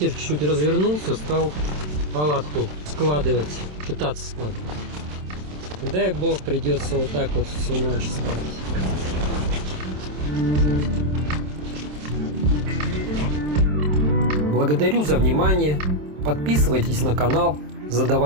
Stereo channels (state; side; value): late; left; 27 ms